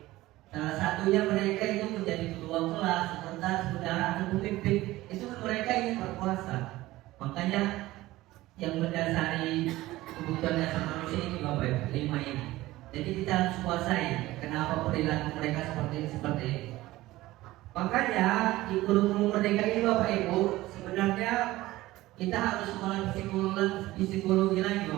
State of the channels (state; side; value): quieter; left; 17.5 dB